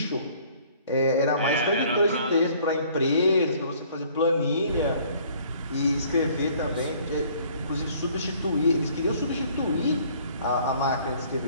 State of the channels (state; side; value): inverted; both; correlation -0.57